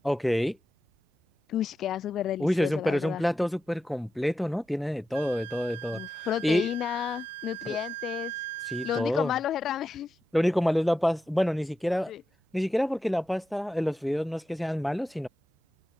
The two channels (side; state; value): both; normal; correlation 0.89